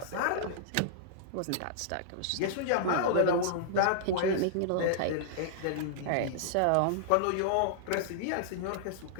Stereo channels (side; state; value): both; different; correlation -0.02